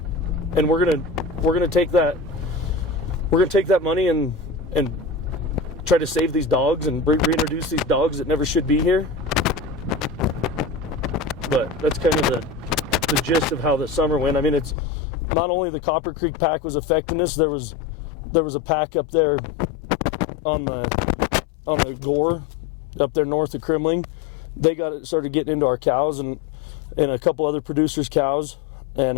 And we're gonna take that money and try to save these dogs and reintroduce these dogs that never should be here. But that's kind of the gist of how the summer went. I mean, it's not only the Copper Creek pack was affecting us. There was a pack up there on the Gore up there north of Kremling. They started getting into our cows and a couple other producers' cows,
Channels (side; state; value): right; drops out; at 14.8 s